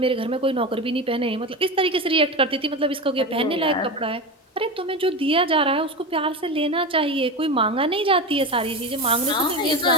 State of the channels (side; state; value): both; normal; correlation 0.22